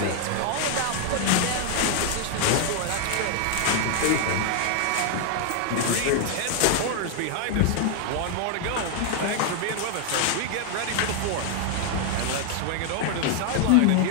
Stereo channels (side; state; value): both; different; correlation 0.00